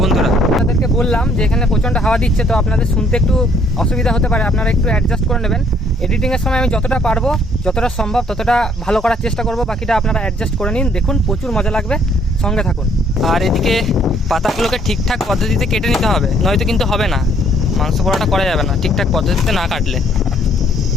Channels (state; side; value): normal; both; correlation 0.63